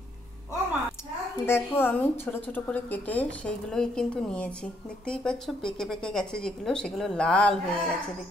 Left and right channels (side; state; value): both; normal; correlation 0.72